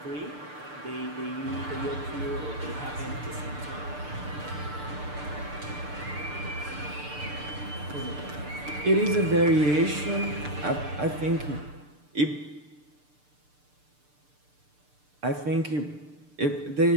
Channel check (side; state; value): left; late; 6.7 ms